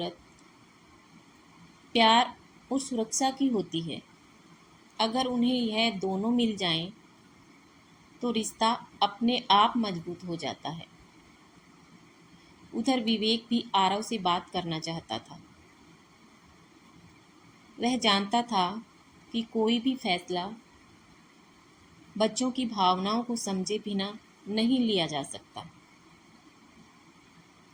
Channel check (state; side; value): identical; both; correlation 1.00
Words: प्यार और सुरक्षा की होती है। अगर उन्हें यह दोनों मिल जाएं, तो रिश्ता अपने आप मजबूत हो जाता है। उधर विवेक भी आरव से बात करना चाहता था। वह जानता था कि कोई भी फैसला बच्चों की भावनाओं को समझे बिना नहीं लिया जा सकता।